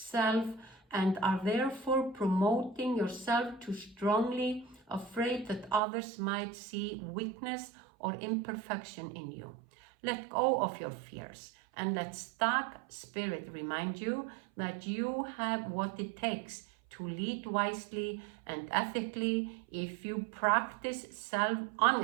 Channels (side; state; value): left; drops out; at 5.8 s